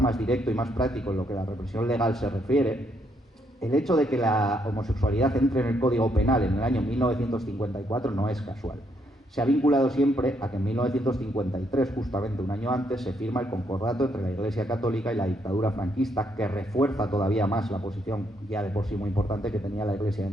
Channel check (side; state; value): both; normal; correlation 0.74